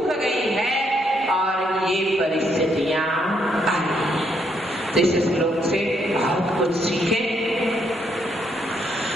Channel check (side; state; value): both; normal; correlation 0.74